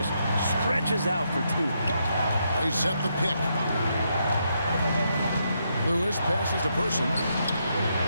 stretches out for 2. They set the pick. Lewis passes to Person.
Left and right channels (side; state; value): both; inverted; correlation -0.79